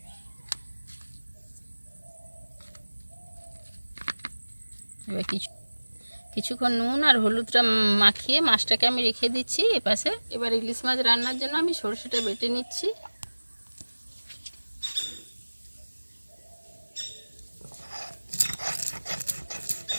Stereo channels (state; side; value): inverted; both; correlation -1.00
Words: এবার কিছুক্ষণ নুন আর হলুদটা মাখিয়ে মাছটাকে আমি রেখে দিচ্ছি এপাশে। এবার ইলিশ মাছ রান্নার জন্য আমি সরষেটা বেটে নিচ্ছি।